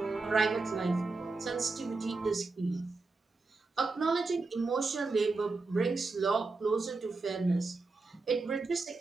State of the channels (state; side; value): quieter; left; 3.8 dB